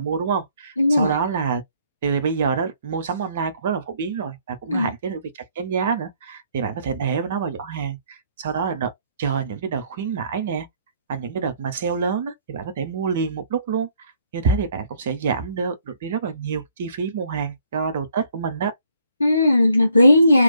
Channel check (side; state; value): both; inverted; correlation -0.66